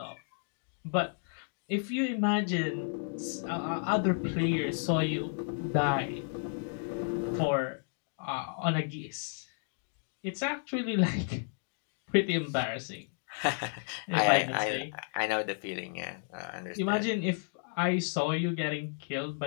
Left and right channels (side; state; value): right; silent; digital silence